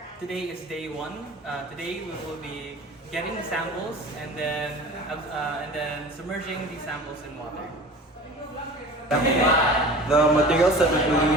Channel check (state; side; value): normal; both; correlation 0.40